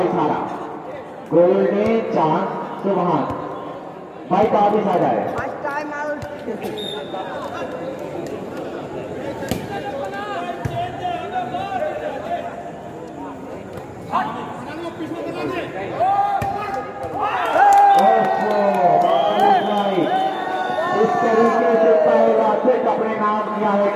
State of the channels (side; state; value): both; identical; correlation 1.00